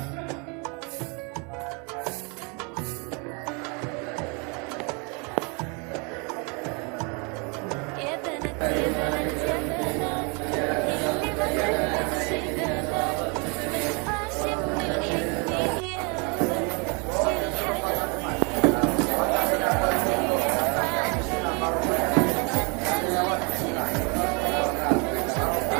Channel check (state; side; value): quieter; left; 32.7 dB